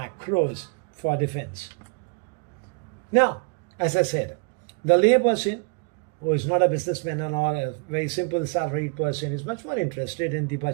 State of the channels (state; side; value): quieter; left; 34.7 dB